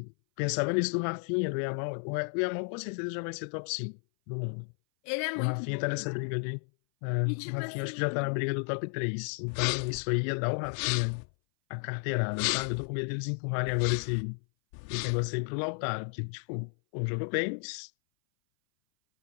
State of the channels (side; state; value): right; silent; 56 dB below the other